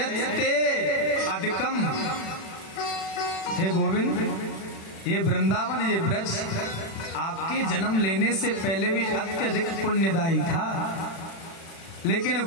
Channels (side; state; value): right; late; 36 ms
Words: अधिकम, हे गोविंद, ये वृंदावन, ये ब्रज आपके जन्म लेने से पहले भी अत्यधिक पुण्यदायी था, लेकिन